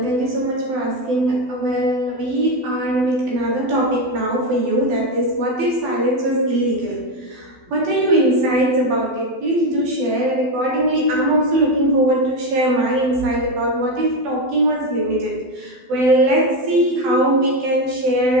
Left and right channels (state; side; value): late; left; 12 ms